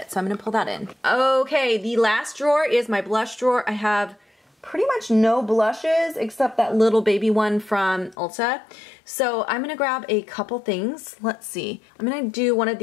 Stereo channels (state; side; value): drops out; right; at 8.2 s